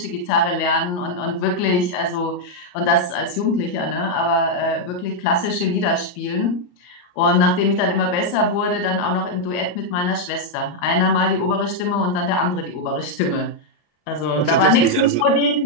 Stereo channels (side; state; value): right; late; 34 ms